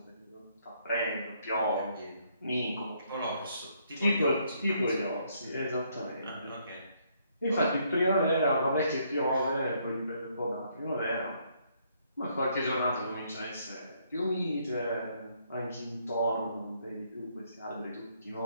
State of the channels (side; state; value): both; inverted; correlation -0.70